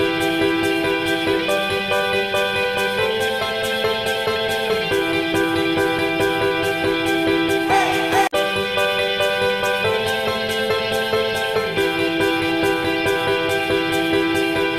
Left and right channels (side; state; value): both; identical; correlation 1.00